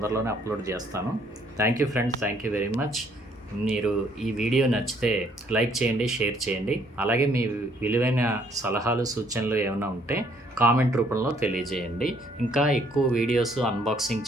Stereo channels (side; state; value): both; normal; correlation 0.65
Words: అప్లోడ్ చేస్తాను. Thank you friends, thank you very much. మీరు ఈ వీడియో నచ్చితే లైక్ చేయండి, షేర్ చేయండి. అలాగే మీ విలువైన సలహాలు, సూచనలు ఏమైనా ఉంటే కామెంట్ రూపంలో తెలియజేయండి. ఇంకా ఎక్కువ వీడియోస్ అన్బాక్సింగ్